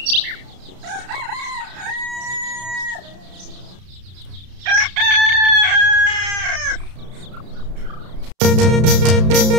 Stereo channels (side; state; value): left; late; 32 ms